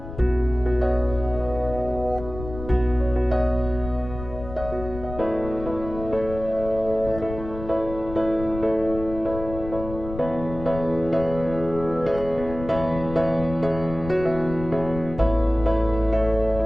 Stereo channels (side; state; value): left; noise; rumble, 11 dB below the sound